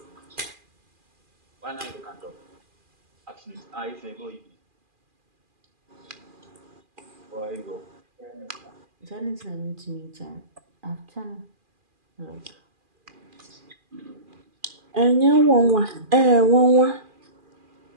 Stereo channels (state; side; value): late; left; 2.4 ms